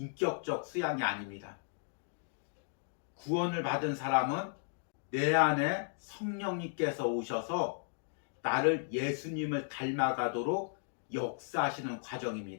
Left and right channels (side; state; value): right; silent; digital silence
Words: 수양이 아닙니다. 구원을 받은 사람은 내 안에 성령님께서 오셔서 나를 예수님을 닮아가도록 역사하시는